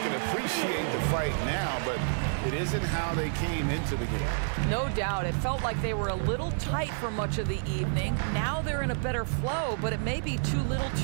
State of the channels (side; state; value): left; silent; digital silence